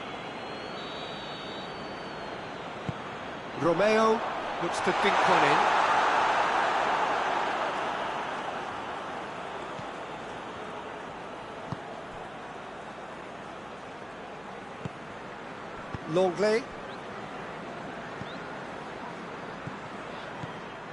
Romeo looks to dink one in. Longley.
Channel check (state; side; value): noise; right; hum, 27 dB below the sound